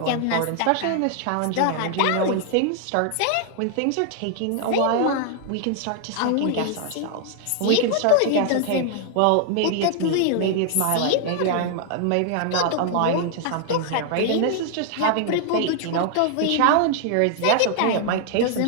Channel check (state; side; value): different; both; correlation 0.00